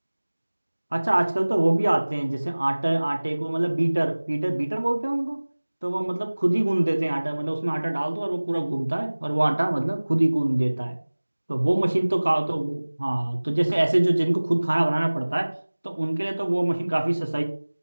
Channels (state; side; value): inverted; both; correlation -1.00